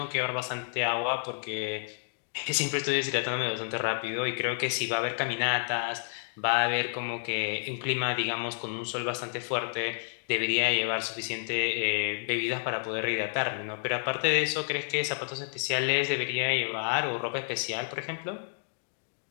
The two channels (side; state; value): right; silent; digital silence